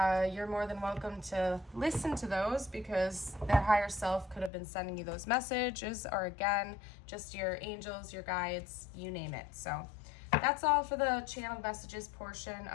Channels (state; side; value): drops out; right; at 4.5 s